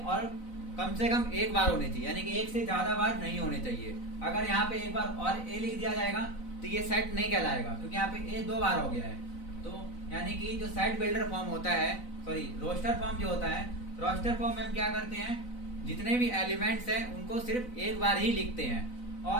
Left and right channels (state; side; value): late; right; 4.0 ms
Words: कम से कम एक बार होने चाहिए, यानी कि एक से ज्यादा बार नहीं होने चाहिए। अगर यहाँ पे एक बार और ए लिख दिया जाएगा तो ये सेट नहीं कहलाएगा, क्योंकि यहाँ पे ए 2 बार हो गया है। तो यानी कि जो सेट बिल्डर फॉर्म होता है, सॉरी रोस्टर फॉर्म जो होता है, रोस्टर फॉर्म में हम क्या करते हैं, जितने भी एलिमेंट्स हैं उनको सिर्फ एक बार ही लिखते हैं,